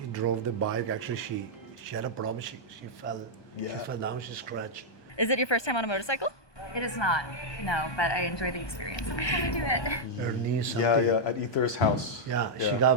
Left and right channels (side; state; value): right; late; 1.2 ms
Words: drove the bike? Actually, she had a problem. She fell. Yeah. She fell down. She scratched. Is it your first time on a motorcycle? It is not, no, but I enjoy the experience. I'm trying to do it. Her knee, something. Yeah, at Ether's house. Yeah, she